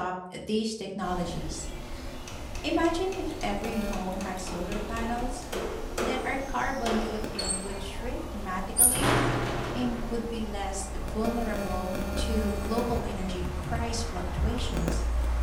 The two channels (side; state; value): both; identical; correlation 1.00